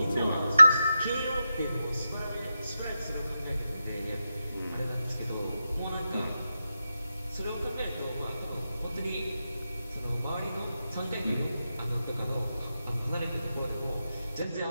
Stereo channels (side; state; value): both; inverted; correlation -0.90